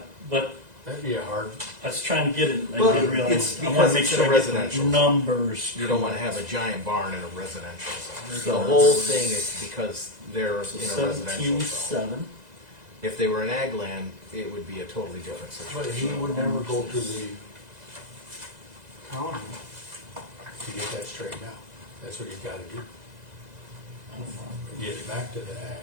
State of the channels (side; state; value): left; late; 2.0 ms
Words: but That'd be a hard, I was trying to get it, I Well, didn't realize, it's I wanna because make it's sure in a I get the residential. numbers. You don't wanna have a giant barn in a residential zone. So The whole thing is because they're So in a residential 17.7. zone. If they were in ag land, it would be a totally different but he situation. would never go to the county to get that straightened out. That's what he's gotta do, get it back to the